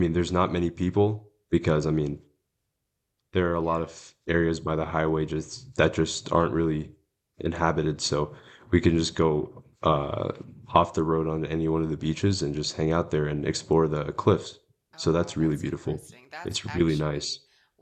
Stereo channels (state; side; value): identical; both; correlation 1.00